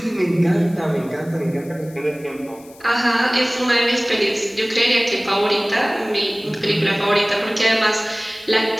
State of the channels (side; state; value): left; noise; hiss, 24 dB below the sound